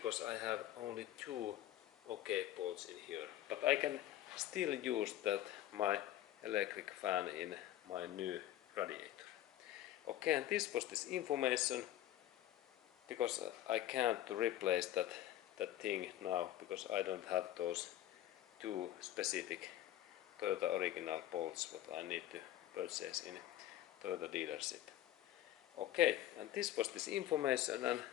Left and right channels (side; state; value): right; quieter; 13.4 dB